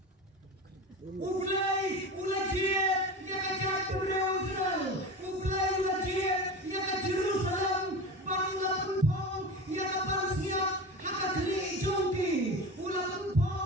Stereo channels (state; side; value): normal; both; correlation 0.28